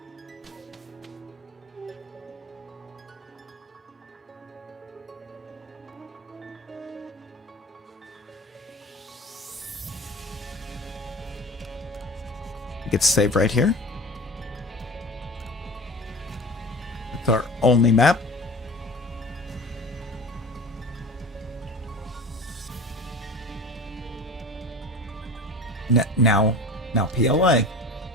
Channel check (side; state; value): both; normal; correlation 0.37